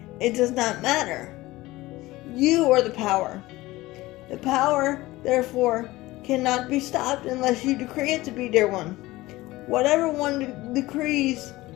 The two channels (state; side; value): quieter; right; 18.8 dB